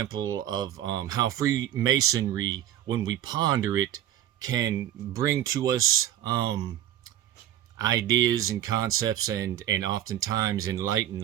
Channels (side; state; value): left; quieter; 12.0 dB